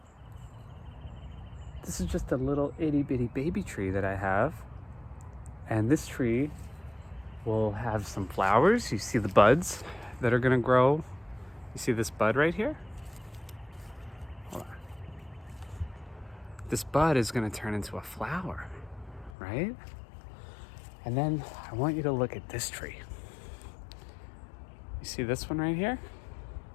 This is just a little itty bitty baby tree that I have. And this tree will have some flowers. You see the buds that are gonna grow. You see this bud right here? Hold on. This bud is gonna turn into a flower, right? And then I want you to look at this tree. You see this one right here?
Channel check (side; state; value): right; drops out; at 19.3 s